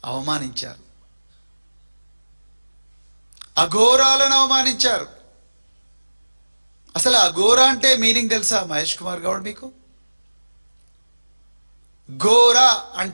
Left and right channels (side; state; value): both; inverted; correlation -1.00